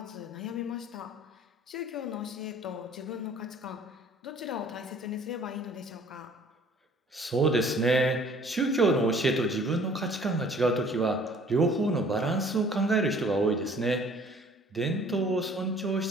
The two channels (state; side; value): normal; both; correlation 0.54